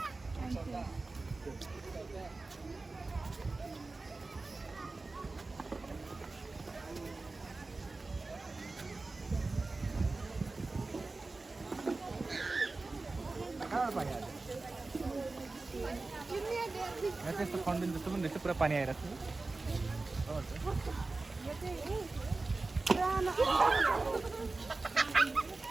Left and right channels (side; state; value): left; quieter; 3.5 dB